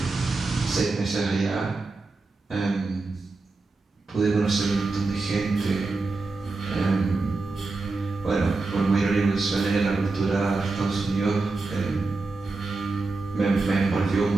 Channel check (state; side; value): quieter; left; 3.6 dB